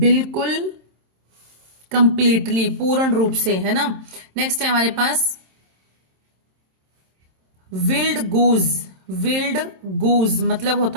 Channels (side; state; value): left; late; 27 ms